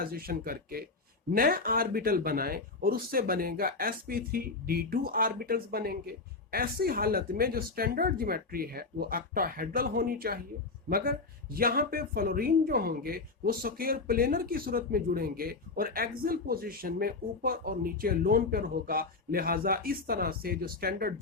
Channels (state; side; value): quieter; right; 3.9 dB